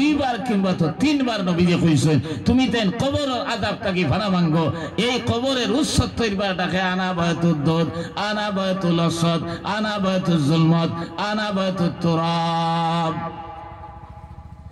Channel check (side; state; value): both; identical; correlation 1.00